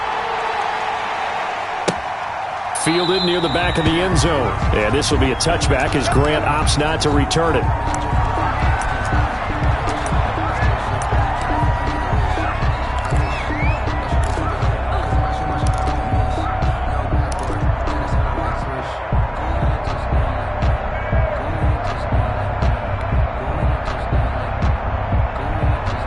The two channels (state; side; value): identical; both; correlation 1.00